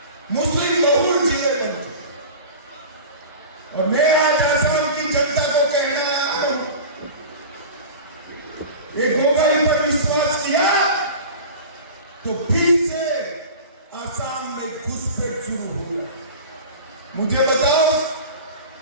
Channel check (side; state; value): both; inverted; correlation -0.35